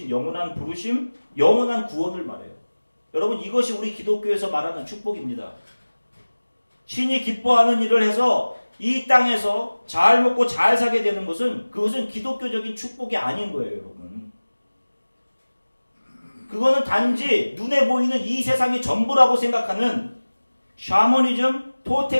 영원한 부르심, 영원한 구원을 말해요. 여러분 이것이 우리 기독교에서 말하는 축복입니다. 신이 기뻐하는 일을 해서 이 땅에서 잘 먹고 잘 사게 되는 것은 그것은 기독교적인 축복이 아닌 거예요, 여러분. 그거는 단지 눈에 보이는 이 세상이 전부라고 생각하는 샤머니즘,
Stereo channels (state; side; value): inverted; both; correlation -1.00